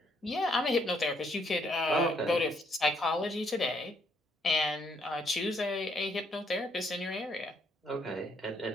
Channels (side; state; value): both; normal; correlation 0.71